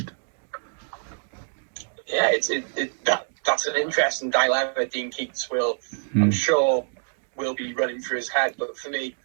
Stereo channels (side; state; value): left; silent; digital silence